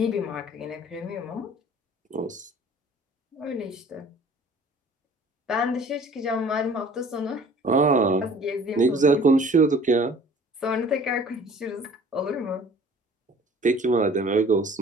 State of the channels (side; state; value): both; normal; correlation 0.50